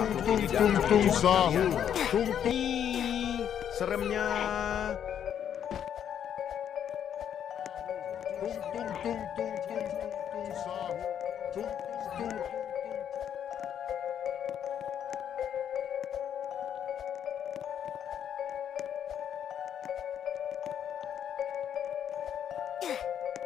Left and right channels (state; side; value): quieter; right; 9.2 dB